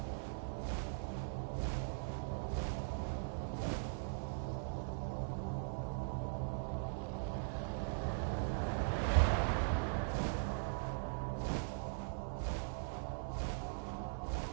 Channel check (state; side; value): silent; left; 51 dB below the other